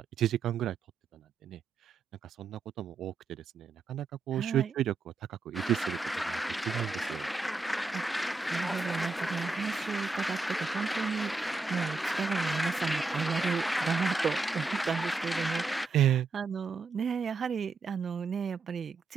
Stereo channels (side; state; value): left; quieter; 4.1 dB